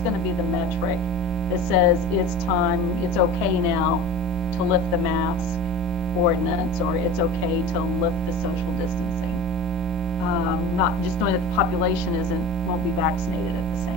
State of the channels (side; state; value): both; normal; correlation 0.34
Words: to be the metric that says it's time, it's okay now to lift the mask ordinance, or it's okay to lift the social distancing? Not just knowing that the population won't be vaccinated at the